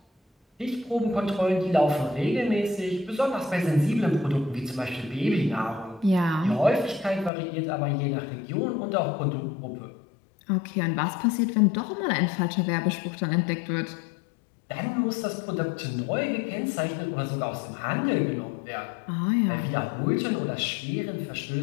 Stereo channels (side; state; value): right; drops out; at 7.3 s